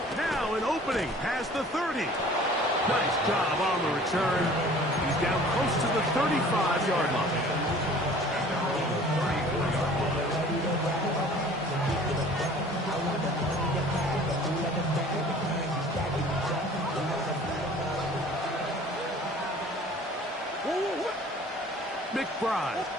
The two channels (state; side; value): normal; both; correlation 0.49